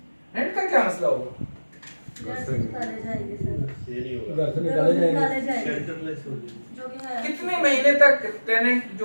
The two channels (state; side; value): inverted; both; correlation -1.00